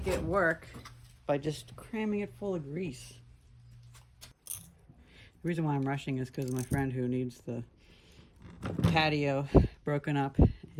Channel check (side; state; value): both; identical; correlation 1.00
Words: it work by just cramming it full of grease. The reason why I'm rushing is because my friend who needs the patio broken up